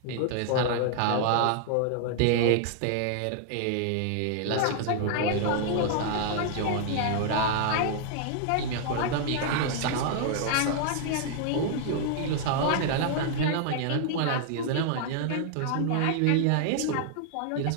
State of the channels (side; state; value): both; different; correlation 0.00